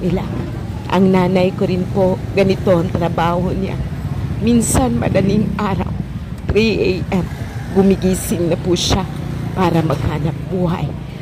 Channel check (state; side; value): identical; both; correlation 1.00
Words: Ang nanay ko rin po, ganito ang trabaho niya. Minsan madaling araw, 3 a.m., gumigising na po siya para maghanap buhay.